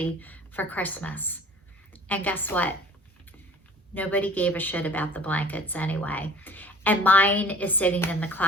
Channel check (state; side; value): normal; both; correlation 0.48